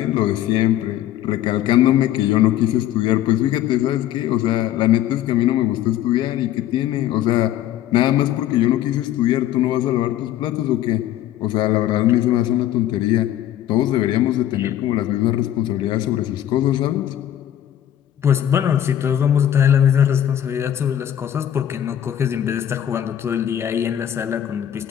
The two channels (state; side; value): quieter; right; 11.6 dB